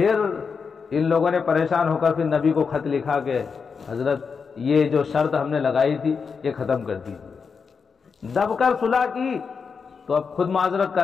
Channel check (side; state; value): right; quieter; 5.6 dB